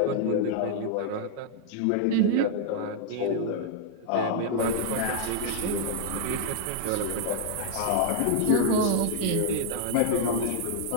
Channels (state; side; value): different; both; correlation -0.01